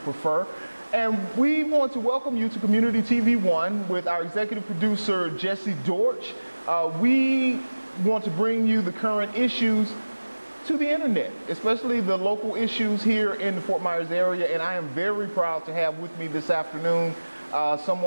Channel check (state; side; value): inverted; both; correlation -1.00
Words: And we want to welcome you to Community TV 1 with our executive producer, Jesse Dortch. We want to bring you the current issues to the internet, especially the local issues here in the Fort Myers area. And I am very proud to have with me this afternoon